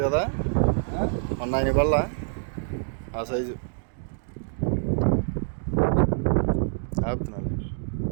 కదా, మొన్న ఆయన వల్ల ఆ సైజు ఆపుతున్నాడు.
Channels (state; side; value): silent; left; digital silence